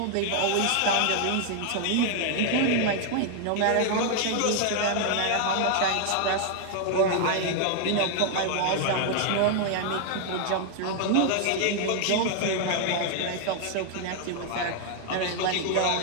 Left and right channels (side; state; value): both; different; correlation 0.00